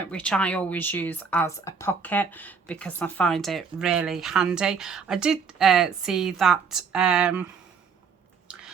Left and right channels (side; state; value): left; quieter; 5.7 dB